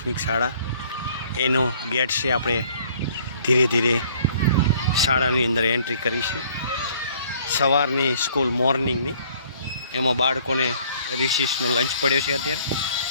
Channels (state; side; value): inverted; both; correlation -0.58